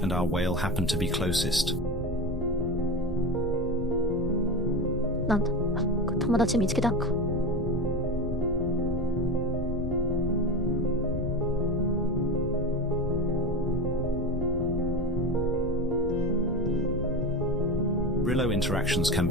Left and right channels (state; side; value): normal; both; correlation 0.24